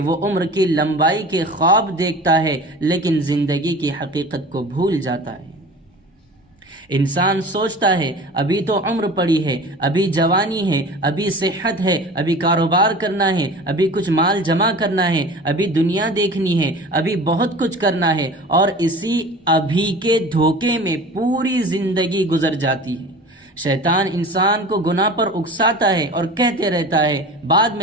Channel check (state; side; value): normal; both; correlation 0.38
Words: وہ عمر کی لمبائی کے خواب دیکھتا ہے لیکن زندگی کی حقیقت کو بھول جاتا ہے۔ انسان سوچتا ہے ابھی تو عمر پڑی ہے، ابھی جوانی ہے، ابھی صحت ہے، ابھی کاروبار کرنا ہے، ابھی کچھ مال جمع کرنا ہے، ابھی دنیا دیکھنی ہے، ابھی بہت کچھ کرنا ہے، اور اسی ابھی کے دھوکے میں پوری زندگی گزر جاتی ہے۔ شیطان انسان کو گناہ پر اکساتا ہے اور کہتے رہتا ہے بعد